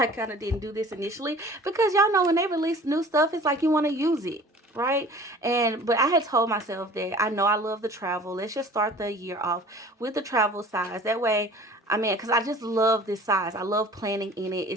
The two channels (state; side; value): normal; both; correlation 0.45